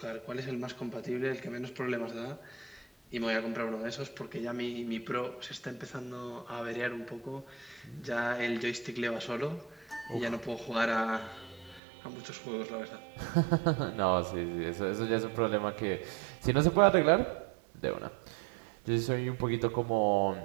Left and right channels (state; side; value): drops out; left; at 11.8 s